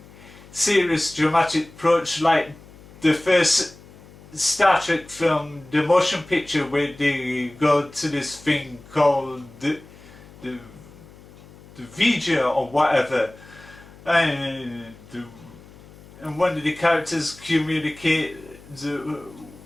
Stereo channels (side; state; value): left; noise; hum, 22 dB below the sound